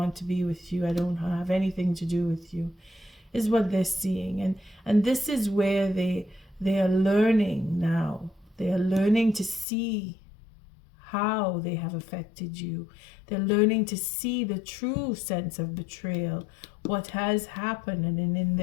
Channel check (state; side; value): drops out; right; at 9.7 s